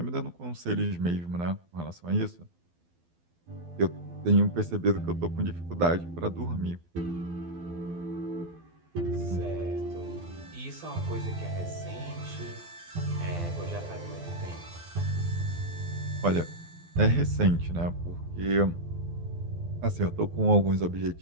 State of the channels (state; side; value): late; left; 12 ms